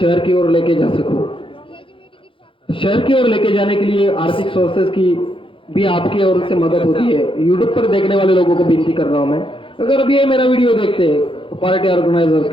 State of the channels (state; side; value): late; right; 0.25 ms